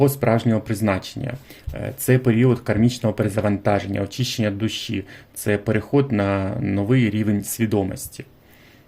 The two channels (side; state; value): both; identical; correlation 1.00